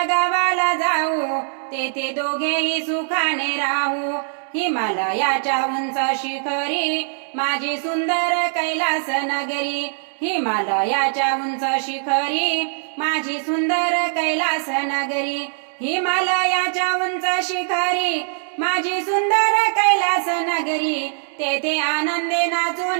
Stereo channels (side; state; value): left; silent; digital silence